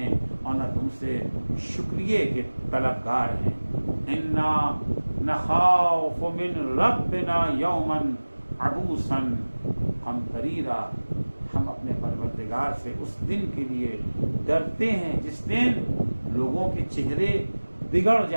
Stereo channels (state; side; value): inverted; both; correlation -1.00